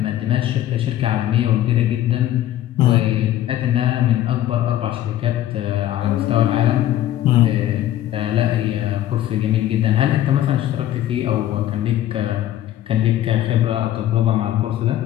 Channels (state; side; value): quieter; right; 12.8 dB